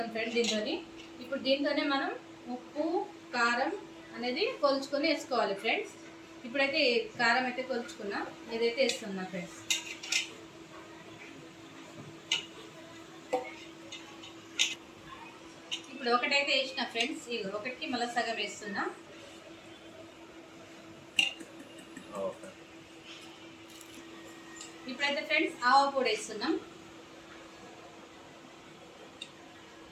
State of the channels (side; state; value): both; identical; correlation 1.00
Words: ఫ్రెండ్స్ దీంతో. ఇప్పుడు దీంతోనే మనం ఉప్పు కారం అనేది కొలుచుకొని వేసుకోవాలి ఫ్రెండ్స్. ఇప్పుడైతే కారం అయితే కొలుచుకున్నా, ఇదైతే వేస్తున్నా ఫ్రెండ్స్. ఇప్పుడు ఒకటైతే వేసిన ఫ్రెండ్స్, ఇది ఒకటికి మళ్ళీ సగం వేస్తున్నా. ఇప్పుడైతే ఫ్రెండ్స్ ఆవ పొడి వేస్తున్నాం.